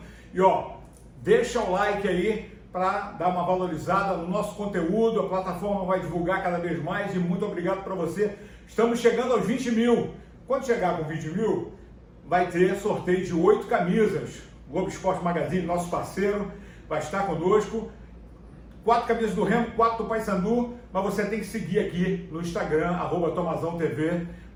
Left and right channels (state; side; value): identical; both; correlation 1.00